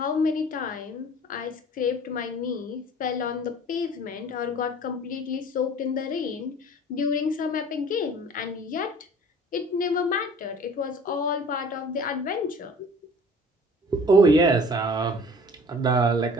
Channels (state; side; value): normal; both; correlation 0.47